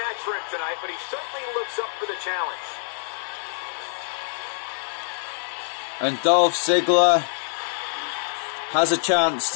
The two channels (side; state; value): right; silent; digital silence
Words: for him tonight, but he certainly looks up for the challenge. And Dolph Ziggler has a chance